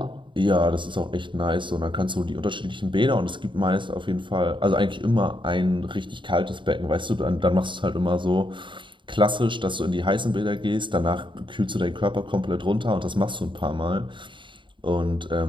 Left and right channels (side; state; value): left; late; 0.23 ms